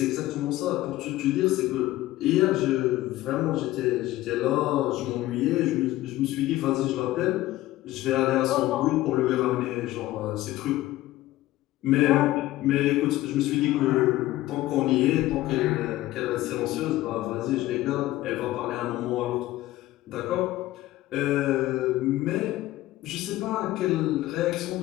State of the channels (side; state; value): right; quieter; 16.3 dB